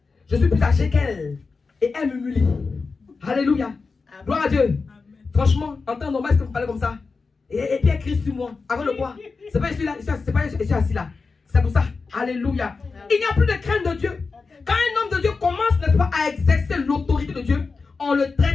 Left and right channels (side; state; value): right; quieter; 4.4 dB